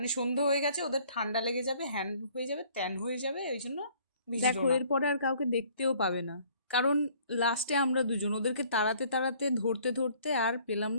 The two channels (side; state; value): both; inverted; correlation -0.58